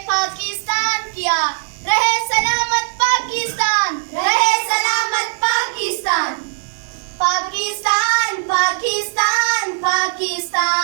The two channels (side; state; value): left; silent; digital silence